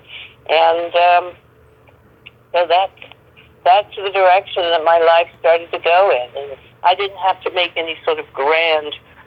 and so that's the direction that my life started to go in. And I didn't have to make any sort of grand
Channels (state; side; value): identical; both; correlation 1.00